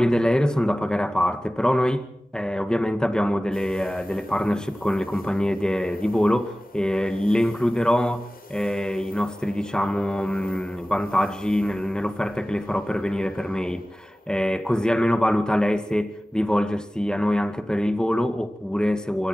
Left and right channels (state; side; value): normal; both; correlation 0.97